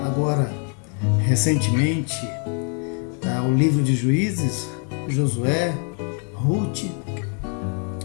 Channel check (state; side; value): quieter; right; 38.6 dB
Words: recentemente o livro de Juízes, Josué, Ruth.